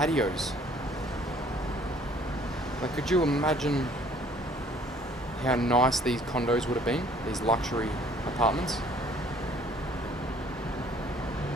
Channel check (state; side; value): normal; both; correlation 0.57